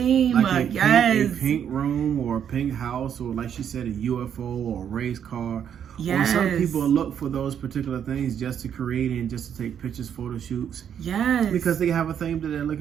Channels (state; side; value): quieter; left; 8.7 dB